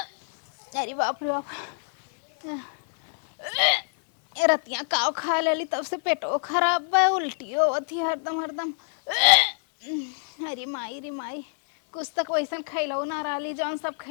अरे बाप रे बाप, रतिया काव खा लेली तब से पेटो खराब बा, उल्टी होती हरदम हरदम। अरे माई रे माई, कुछ तक वैसन खैलऊ ना रही, जौन सब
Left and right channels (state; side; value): silent; right; digital silence